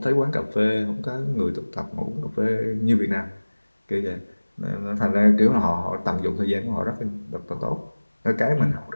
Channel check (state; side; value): inverted; both; correlation -1.00